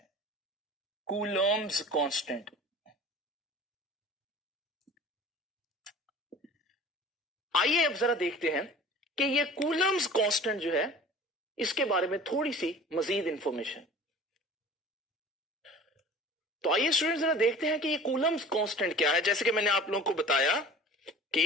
कूलम्स कांस्टेंट। आइए अब जरा देखते हैं कि ये कूलम्स कांस्टेंट जो है इसके बारे में थोड़ी सी मजीद इंफॉर्मेशन। तो आइए स्टूडेंट जरा देखते हैं कि ये कूलम्स कांस्टेंट क्या है। जैसे कि मैंने आप लोगों को बताया कि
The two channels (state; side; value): normal; both; correlation 0.42